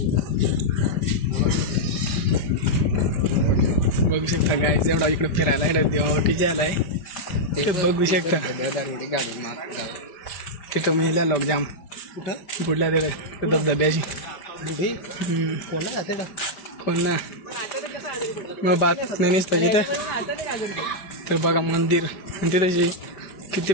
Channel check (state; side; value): late; right; 5.1 ms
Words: बघू शकता गाईज. एवढा इकडे फिरायला इकडे देवावटी जायला आहे ते बघू शकता. तिथं महिला लोक जाम बुडल्या तिकडे धबधब्याची. कोण ना मग बात नाही नसतं तिथे. तर बघा मंदिर आणि तिथे किती